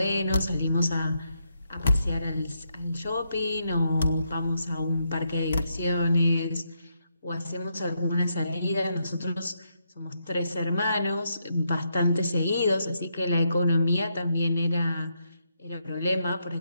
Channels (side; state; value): both; inverted; correlation -0.80